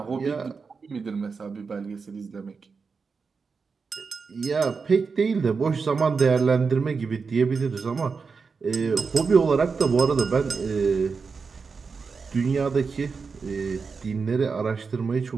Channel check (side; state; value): left; quieter; 5.1 dB